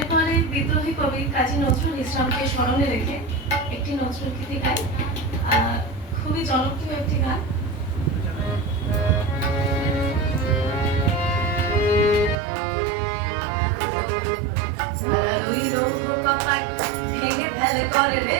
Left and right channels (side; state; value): left; drops out; at 12.4 s